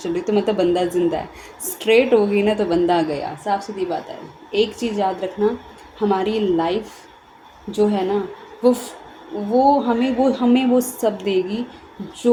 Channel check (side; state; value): both; identical; correlation 1.00